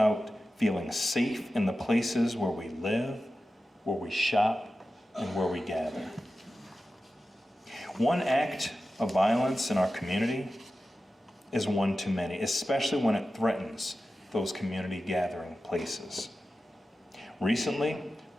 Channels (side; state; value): both; normal; correlation 0.93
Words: feeling safe in the places where we live, where we shop, and where we gather. One act of violence in our community is one too many, especially when it threatens those community gathering places. Recently,